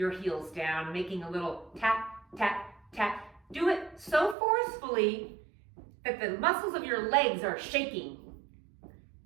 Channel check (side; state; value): left; drops out; at 4.4 s